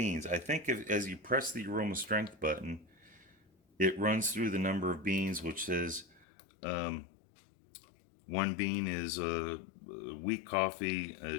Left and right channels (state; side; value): drops out; right; at 6.2 s